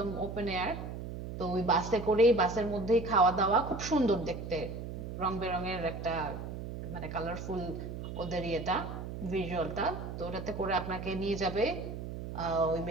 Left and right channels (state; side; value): noise; right; hum, 8 dB below the sound